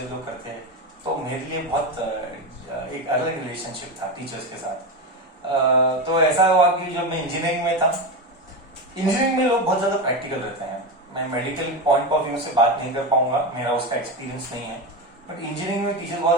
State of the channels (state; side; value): normal; both; correlation 0.16